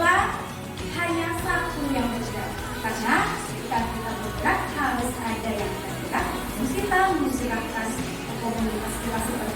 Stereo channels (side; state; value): both; identical; correlation 1.00